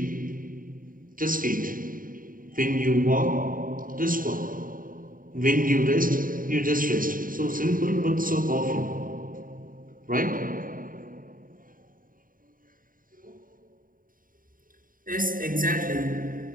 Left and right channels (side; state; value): left; late; 0.40 ms